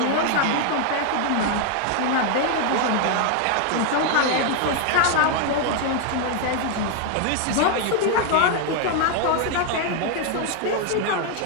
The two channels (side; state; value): both; different; correlation 0.00